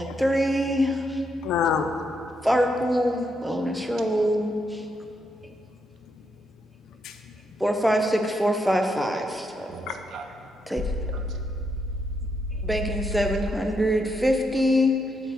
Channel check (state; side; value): normal; both; correlation 0.79